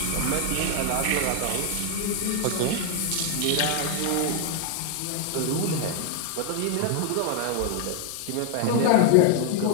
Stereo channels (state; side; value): different; both; correlation 0.00